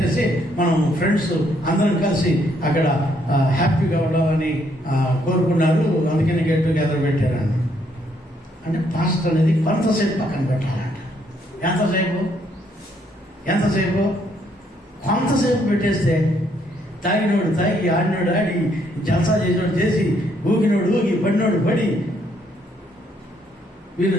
మనం ఫ్రెండ్స్ అందరం కలిసి అక్కడ హ్యాపీగా ఉండాలని కోరుకున్నారు, అందుకని గెట్ టుగెదర్ పెట్టారన్న. అంటే పాస్టర్ అనేది కొంతసేపు పక్కన పెట్టాలంట. ఎంతసేపు? కొంతసేపు పెట్టేస్తే తాగినోడు తాగి, ఆడినోడు ఆడి, జల్సా చేసినోడు చేసి, ఊగినోడు ఊగి, పడినోడు పడి, వీళ్ళు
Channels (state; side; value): normal; both; correlation 0.71